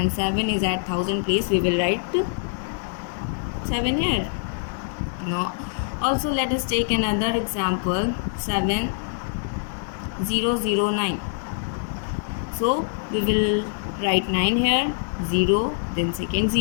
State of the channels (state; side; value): silent; right; digital silence